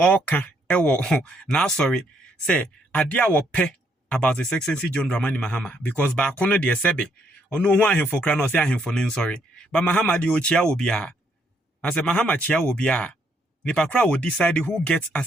ewo na sorry say adia wo pe about His Excellency John Dramani Mahama because ba kono de sebe ono hu ahemfo kra no say ahemfo ne sorry. But Mahama de ochia obi a. As a Mahama chia obi a. Nipakra will decide who gets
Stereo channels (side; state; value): both; normal; correlation 0.72